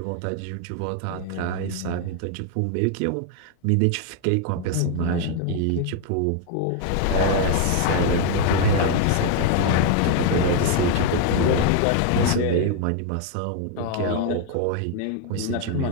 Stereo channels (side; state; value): both; different; correlation 0.01